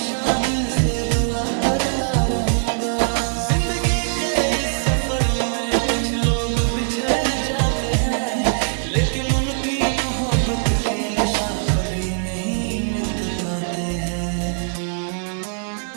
दिल से दुआ करता रहूंगा। जिंदगी के इस सफर में कुछ लोग बिछड़ जाते हैं, लेकिन उनकी मोहब्बत के नशा कभी नहीं मिट पाते हैं।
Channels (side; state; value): left; silent; digital silence